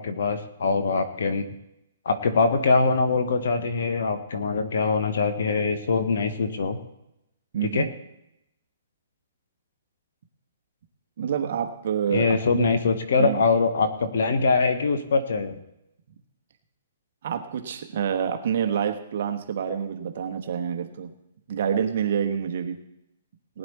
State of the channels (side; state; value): both; inverted; correlation -0.65